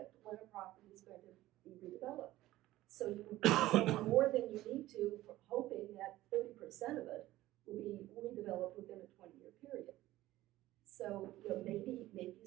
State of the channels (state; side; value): quieter; left; 16.0 dB